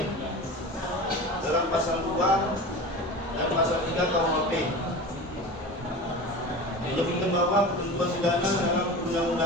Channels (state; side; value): normal; both; correlation 0.32